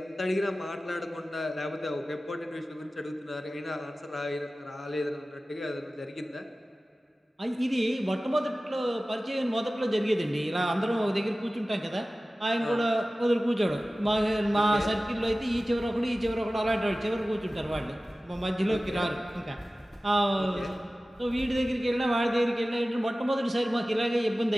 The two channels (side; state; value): both; normal; correlation 0.96